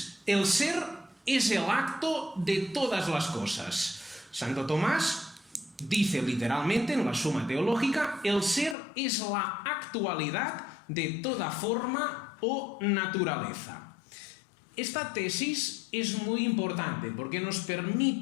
el ser es el acto de todas las cosas. Santo Tomás dice literalmente en la Suma Teológica: el ser es la actualidad de toda forma o naturaleza. Esta tesis es muy importante porque nos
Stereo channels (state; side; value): drops out; right; at 8.8 s